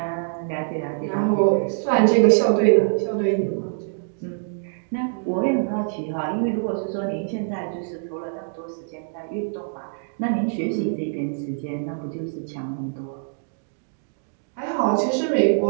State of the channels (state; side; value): silent; left; digital silence